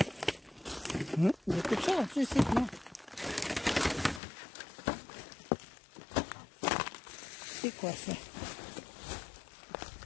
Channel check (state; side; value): drops out; right; at 4.2 s